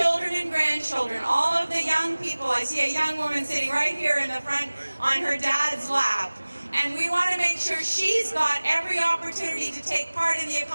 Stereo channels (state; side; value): inverted; both; correlation -1.00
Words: and grandchildren, all of the young people, I see a young woman sitting right here in the front on her dad's lap, and we want to make sure she's got every opportunity to take part in the